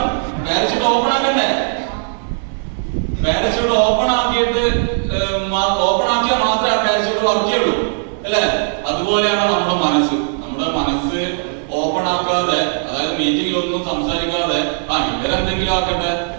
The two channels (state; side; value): silent; left; 66 dB below the other